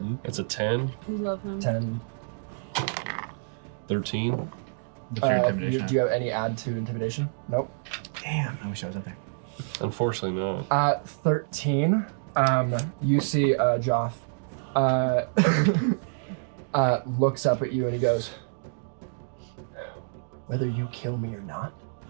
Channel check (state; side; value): silent; left; digital silence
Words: It's a 10, We love him. 10. 13. What's your intimidation? Do you have any add to intimidation? Nope. Damn, I wish I was up there. Unfortunately not. 13. You see Joff looks up at you and he goes, whether you kill me or not,